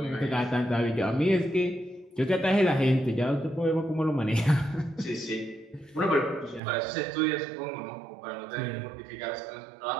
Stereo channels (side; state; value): left; drops out; at 6.6 s